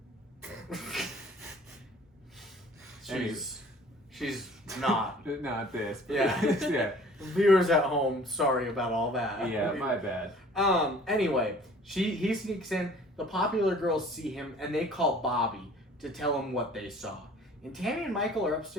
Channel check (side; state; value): both; normal; correlation 0.50